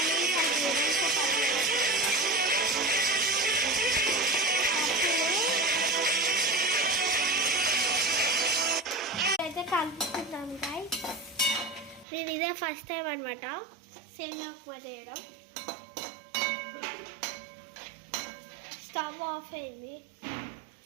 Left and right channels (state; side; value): drops out; left; at 12.1 s